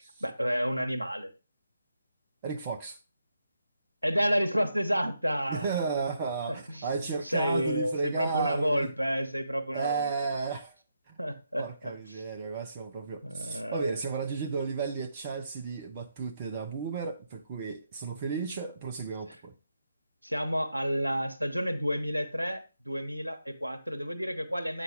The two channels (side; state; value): both; inverted; correlation -0.81